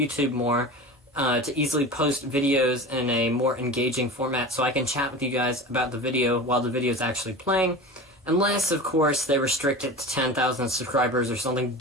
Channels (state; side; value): normal; both; correlation 0.32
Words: more, to easily post videos in a more engaging format so I can chat with you guys about the video while the video is actually playing, unless, of course, they restrict it to 10,000 subscribers or something